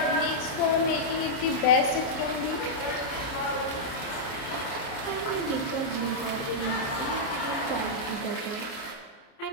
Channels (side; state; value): right; late; 30 ms